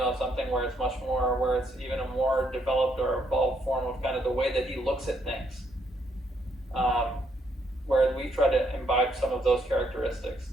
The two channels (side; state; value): both; normal; correlation 0.73